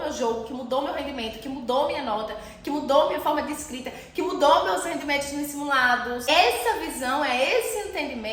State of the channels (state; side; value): identical; both; correlation 1.00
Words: meu jogo, que mudou meu rendimento, que mudou minha nota, que mudou minha forma de escrita, que mudou meus rendimentos nos simulados. Essa visão, esse